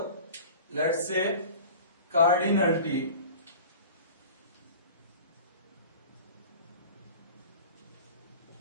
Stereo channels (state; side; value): inverted; both; correlation -0.39